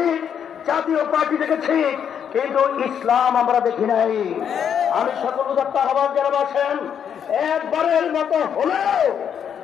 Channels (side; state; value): right; quieter; 8.2 dB